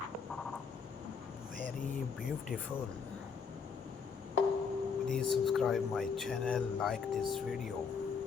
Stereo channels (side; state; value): right; quieter; 5.9 dB